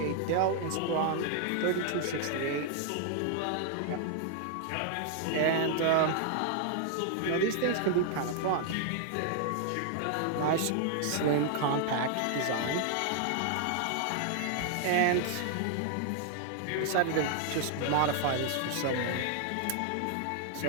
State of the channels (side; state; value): both; different; correlation 0.00